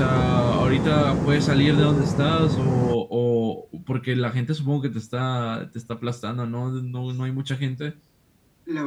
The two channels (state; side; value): identical; both; correlation 1.00